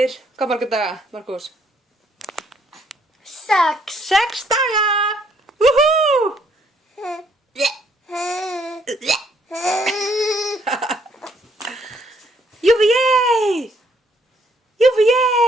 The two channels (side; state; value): both; normal; correlation 0.67